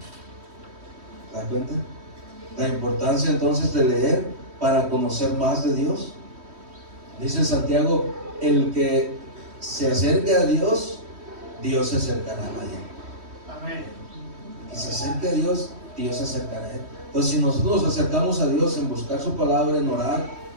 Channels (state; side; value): late; left; 3.1 ms